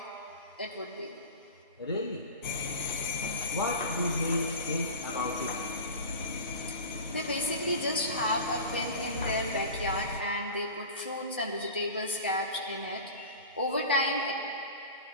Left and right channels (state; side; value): inverted; both; correlation -0.33